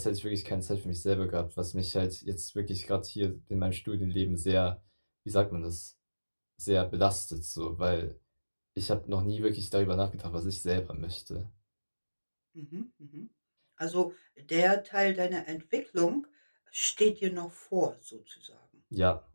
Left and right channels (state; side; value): inverted; both; correlation -1.00